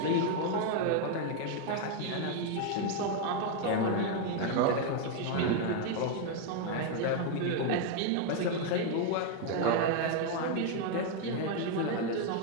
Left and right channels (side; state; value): both; different; correlation 0.01